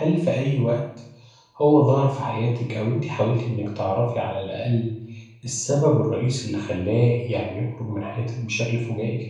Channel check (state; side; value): identical; both; correlation 1.00